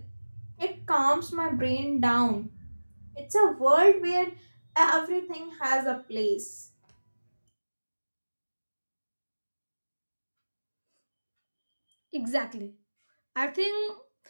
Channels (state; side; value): inverted; both; correlation -1.00